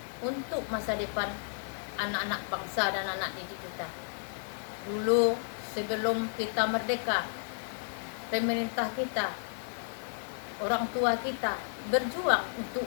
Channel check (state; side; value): silent; right; 56 dB below the other